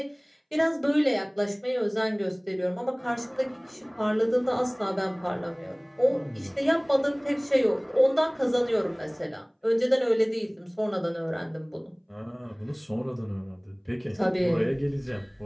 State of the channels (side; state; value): both; identical; correlation 1.00